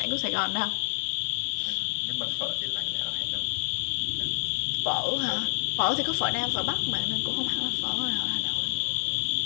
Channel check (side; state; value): right; silent; digital silence